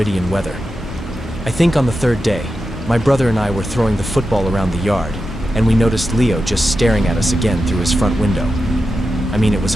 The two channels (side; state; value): both; normal; correlation 0.90